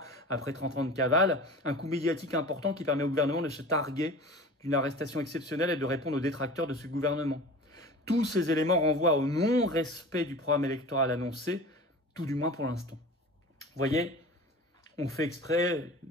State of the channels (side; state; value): both; normal; correlation 0.38